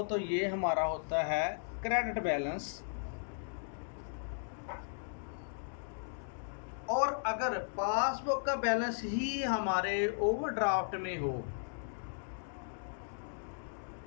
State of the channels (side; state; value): right; silent; digital silence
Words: तो ये हमारा होता है क्रेडिट बैलेंस। और अगर पासबुक का बैलेंस ही हमारे ओवरड्राफ्ट में हो,